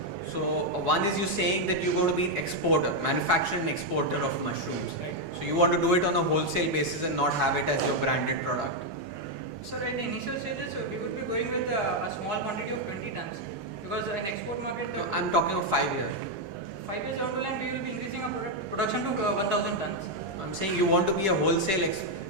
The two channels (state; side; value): late; left; 10 ms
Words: So one is you saying that you're going to be an exporter, manufacturer and exporter of mushrooms. So you want to do it on a wholesale basis and not have it as your branded product. So at the initial stages, we would be going with a small quantity of 20 tons, because in export market, I'm talking of 5 years. 5 years down the line, we will be increasing our production to 1,000 tons. I'm saying you want to be a wholesale